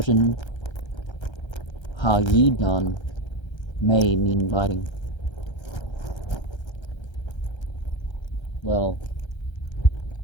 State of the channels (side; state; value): right; late; 1.3 ms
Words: Ha-yidan, may mean biting. Well,